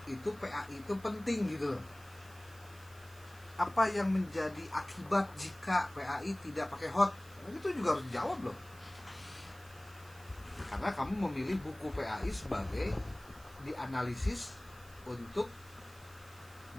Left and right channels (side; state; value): right; noise; hiss, 22 dB below the sound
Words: itu PAI itu penting gitu loh. Apa yang menjadi akibat jika PAI tidak pakai hot? Itu juga harus dijawab loh. Karena kamu memilih buku PAI sebagai dianalisis untuk